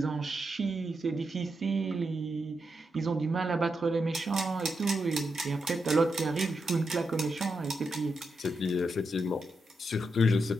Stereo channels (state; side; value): normal; both; correlation 0.85